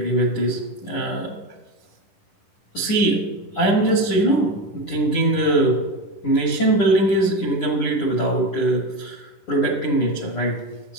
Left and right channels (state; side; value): late; right; 9.9 ms